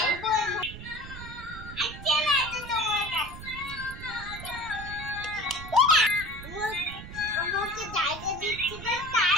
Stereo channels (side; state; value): right; noise; rumble, 12 dB below the sound